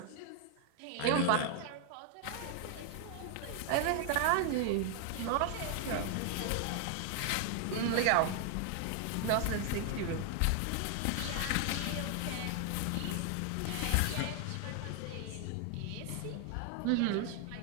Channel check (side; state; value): both; different; correlation 0.00